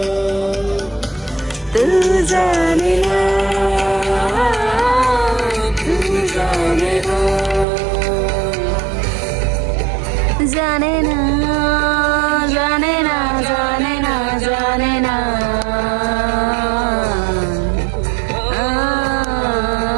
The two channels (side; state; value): left; drops out; at 7.7 s